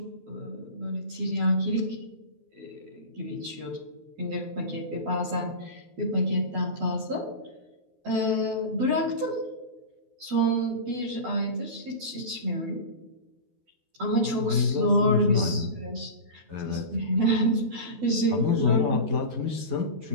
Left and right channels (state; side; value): late; left; 12 ms